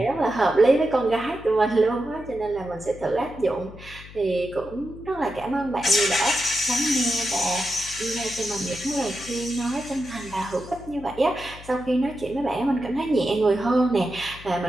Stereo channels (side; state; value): left; noise; hum, 17 dB below the sound